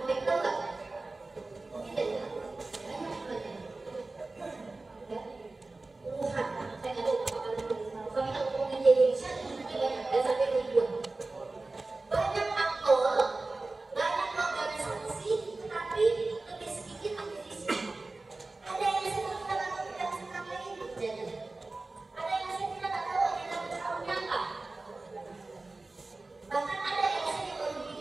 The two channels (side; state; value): left; quieter; 3.3 dB